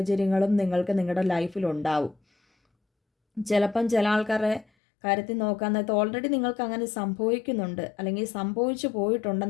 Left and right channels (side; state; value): right; drops out; at 4.7 s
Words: നിങ്ങൾക്ക് നിങ്ങളുടെ ലൈഫിലുണ്ടാവും. ചിലപ്പം ചില ആൾക്കാരുടെ കാര്യത്തിൽ നോക്കാൻ നേരത്ത് ഓൾറെഡി നിങ്ങൾക്ക് അങ്ങനെ സംഭവിക്കുന്നുണ്ട്, അല്ലെങ്കിൽ സംഭവിച്ചു